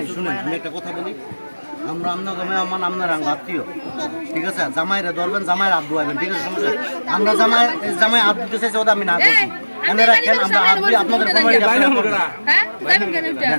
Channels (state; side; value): inverted; both; correlation -1.00